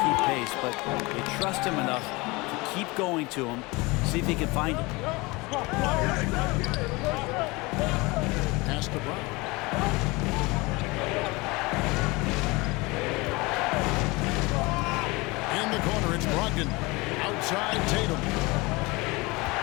keep pace, but they trust him enough to keep going to him, see if he can find it. Pass to Brown. In the corner, it's Brogdon. Outside Tatum.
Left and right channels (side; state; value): right; quieter; 24.2 dB